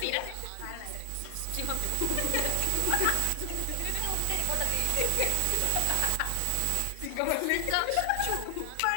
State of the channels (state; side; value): different; both; correlation 0.00